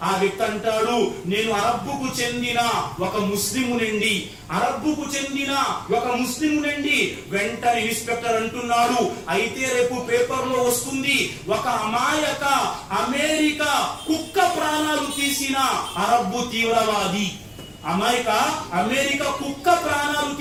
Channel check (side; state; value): both; identical; correlation 1.00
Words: ఆ వ్యక్తి అంటాడు, నేను అరబ్బుకు చెందిన ఒక ముస్లిమునండి. వెంటనే ఇన్స్పెక్టర్ అంటున్నాడు, అయితే రేపు పేపర్ లో వస్తుంది ఒక అమాయక అమెరికా కుక్క ప్రాణాలు తీసిన అరబ్బు తీవ్రవాది. అమెరికా కుక్క ప్రాణాలు